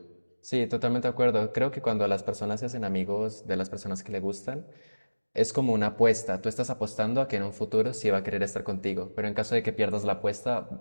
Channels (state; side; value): inverted; both; correlation -1.00